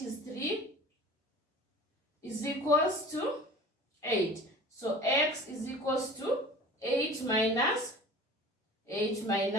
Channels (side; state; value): both; normal; correlation 0.41